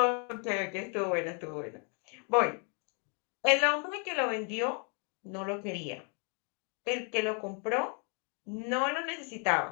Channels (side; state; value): right; quieter; 39.1 dB